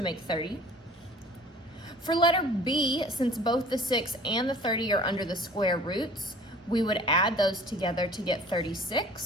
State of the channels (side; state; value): both; normal; correlation 0.49